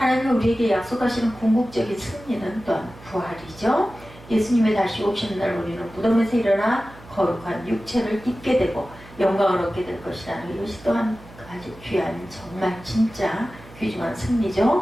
우리에게 약속하시는 궁극적인 승리는 또한 부활이죠. 예수님의 다시 오시는 날 우리는 무덤에서 일어나 거룩한 육체를 입게 되고 영광을 얻게 될 것이라는 이것이 또한 아주 귀한 정말 진짜 귀중한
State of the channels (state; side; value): noise; right; hum, 20 dB below the sound